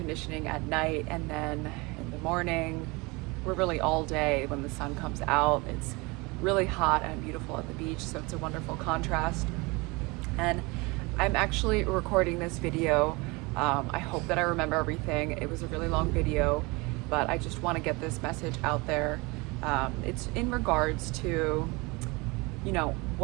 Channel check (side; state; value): left; quieter; 25.8 dB